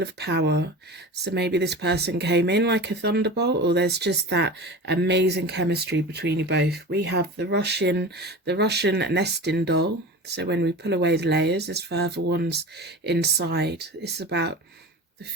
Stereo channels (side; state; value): both; normal; correlation 0.33